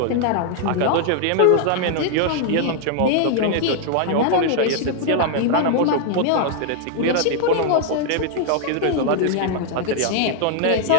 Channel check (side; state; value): both; different; correlation 0.00